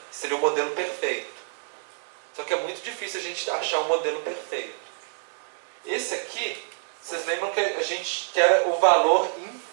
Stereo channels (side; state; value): left; silent; digital silence